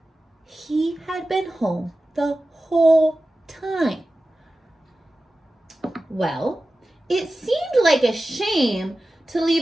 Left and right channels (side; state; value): both; normal; correlation 0.95